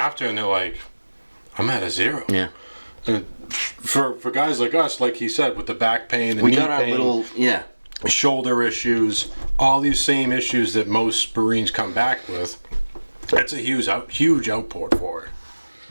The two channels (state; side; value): inverted; both; correlation -1.00